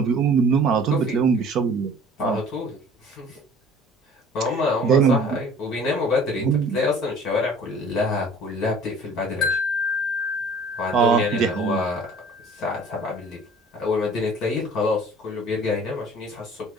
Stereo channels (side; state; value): both; normal; correlation 0.49